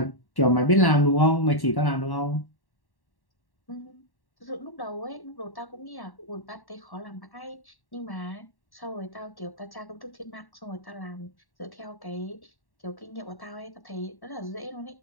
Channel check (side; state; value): right; late; 1.1 ms